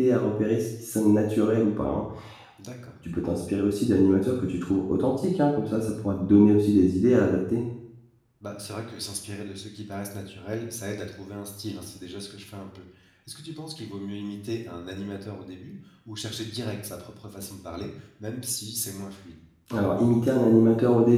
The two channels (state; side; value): identical; both; correlation 1.00